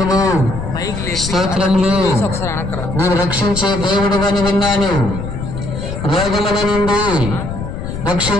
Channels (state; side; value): noise; left; rumble, 6 dB below the sound